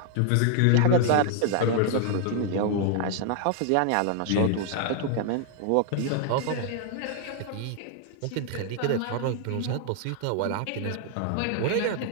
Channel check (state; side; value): different; both; correlation 0.00